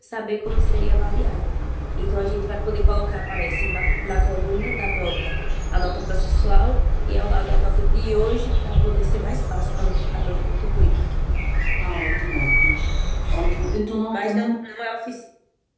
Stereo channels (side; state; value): both; identical; correlation 1.00